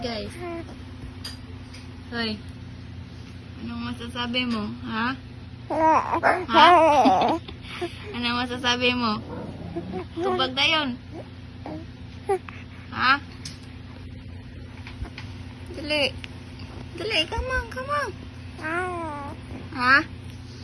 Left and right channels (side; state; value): both; identical; correlation 1.00